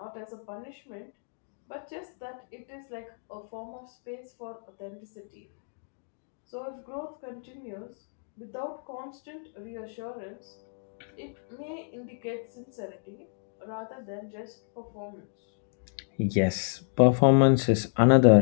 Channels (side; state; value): right; silent; digital silence